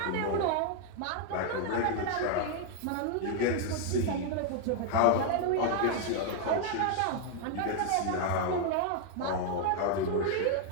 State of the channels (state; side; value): different; both; correlation 0.00